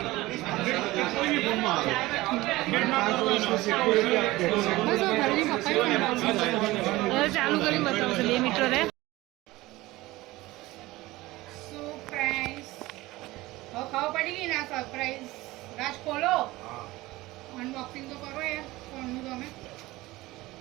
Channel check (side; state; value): left; quieter; 19.1 dB